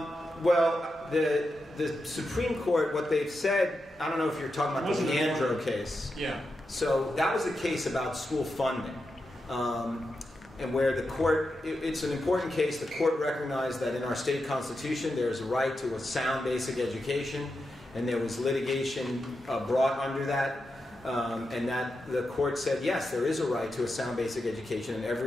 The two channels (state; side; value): normal; both; correlation 0.88